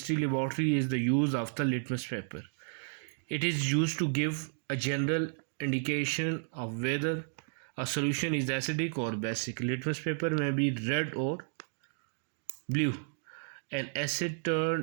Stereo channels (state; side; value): silent; left; digital silence